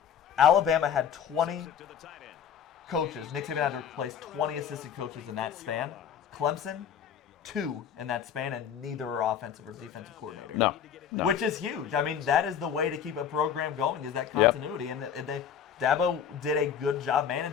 Alabama had 20 coaches. Nick Saban had to replace 20 assistant coaches in that span. Clemson, 2 in that span, and neither are offensive or defensive coordinator. No. Which is huge. I mean, that is the way to keep a program going is that continuity. And Dabo did a good job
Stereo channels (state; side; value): quieter; right; 8.2 dB